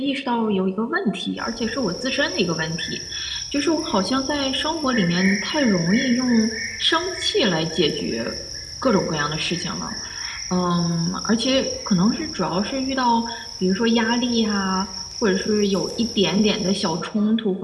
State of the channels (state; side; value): identical; both; correlation 1.00